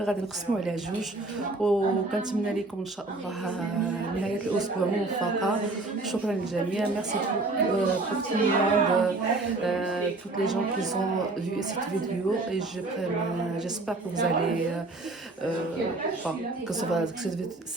غادي نقسموا عليه جوج وكنتمنى لكم ان شاء الله نهايه الاسبوع موفقه. شكرا للجميع. ميرسي بور tout le monde. toutes les gens qui ont vu cette vidéo et j'espère que vous allez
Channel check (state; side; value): quieter; left; 3.1 dB